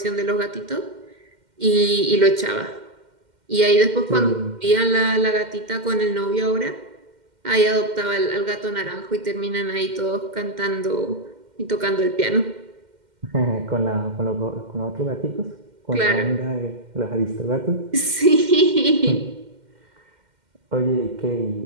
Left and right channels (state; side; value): late; left; 2.1 ms